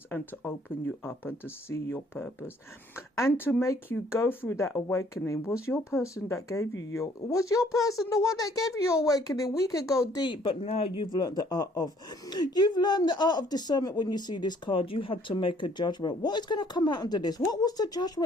and to open you up and to see your purpose and to make you go through that awakening. Was your person the one that gave you your awakening? We could go deep, but now you've learned the art of discernment. When you see this card, you had to make a judgment. What is going to come out under this? What was the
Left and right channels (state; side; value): normal; both; correlation 0.61